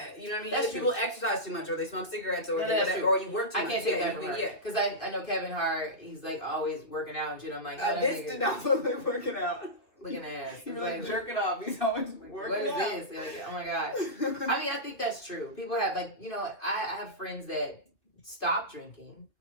you know what I mean. That's Either people exercise too much, or they smoke cigarettes, or whatever, or you work too much. I can't take that from her. Yeah, because I know Kevin Hart. He's like always working out and shit. I'm like, this did not look like working out. Looking at He's like jerking off. He's always working out. What is this? Like, oh my god. I mean, I think that's true. People have I have friends that stopped drinking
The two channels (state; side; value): late; right; 2.9 ms